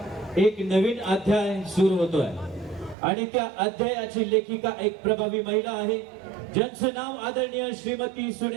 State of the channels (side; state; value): left; drops out; at 3.0 s